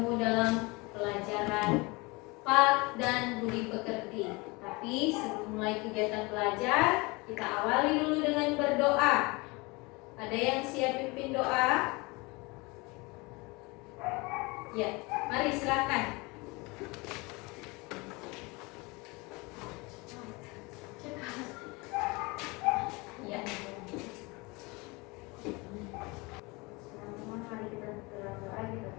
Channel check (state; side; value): quieter; right; 25.7 dB